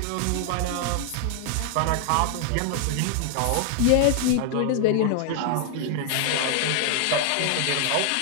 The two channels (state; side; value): different; both; correlation 0.00